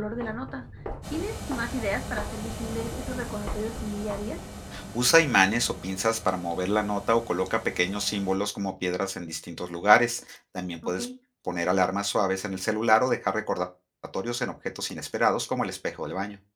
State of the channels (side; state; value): both; identical; correlation 1.00